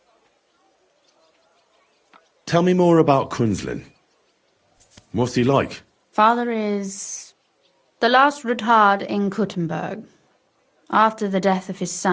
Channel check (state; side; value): identical; both; correlation 1.00